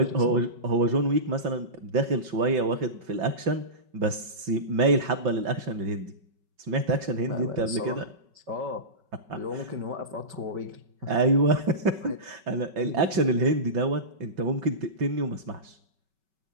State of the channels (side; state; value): left; late; 5.3 ms